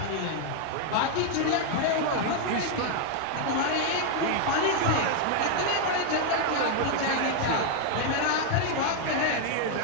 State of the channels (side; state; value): both; different; correlation 0.00